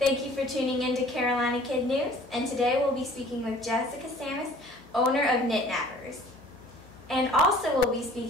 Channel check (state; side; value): normal; both; correlation 0.51